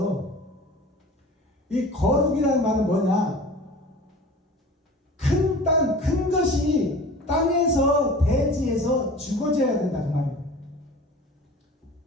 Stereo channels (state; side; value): normal; both; correlation 0.40